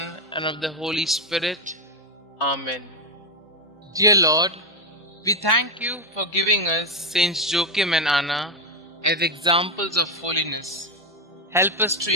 and of the Holy Spirit. Amen. Dear Lord, we thank you for giving us Saints Joachim and Anna as examples of holiness. Help us to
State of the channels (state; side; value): normal; both; correlation 0.07